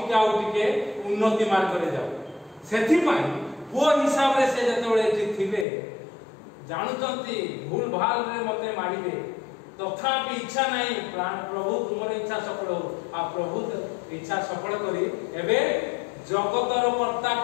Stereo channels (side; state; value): right; drops out; at 5.7 s